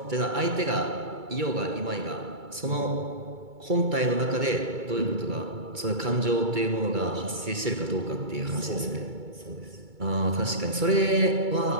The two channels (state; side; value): late; left; 2.3 ms